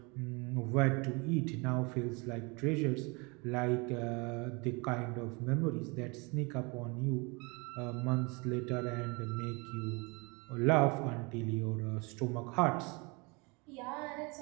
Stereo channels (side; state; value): left; quieter; 28.9 dB